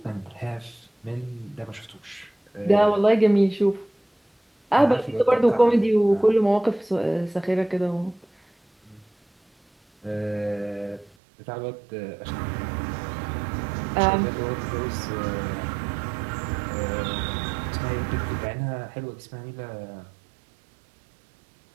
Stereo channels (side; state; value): left; drops out; at 11.1 s